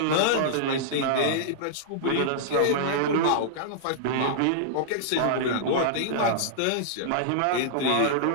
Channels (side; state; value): both; different; correlation -0.02